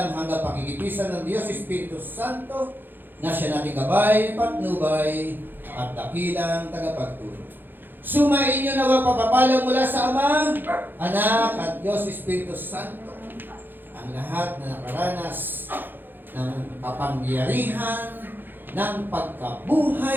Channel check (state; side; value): late; left; 0.094 ms